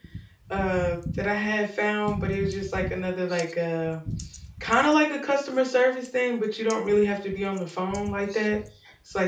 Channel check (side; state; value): both; identical; correlation 1.00